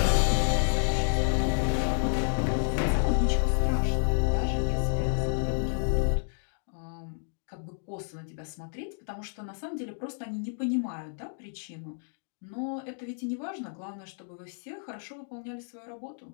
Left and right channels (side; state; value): right; silent; digital silence